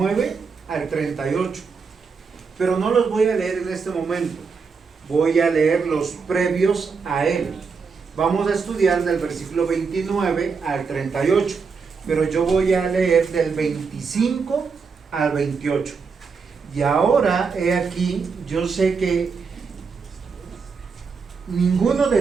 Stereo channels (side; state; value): left; quieter; 5.2 dB